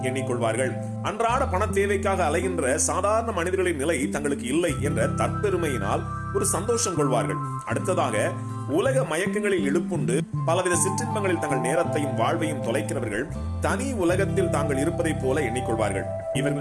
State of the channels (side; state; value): both; identical; correlation 1.00